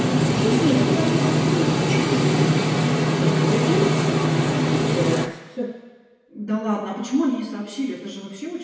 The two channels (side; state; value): both; identical; correlation 1.00